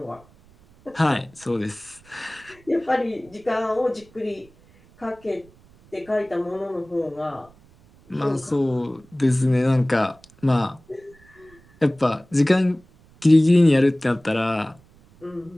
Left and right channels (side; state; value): right; noise; rumble, 28 dB below the sound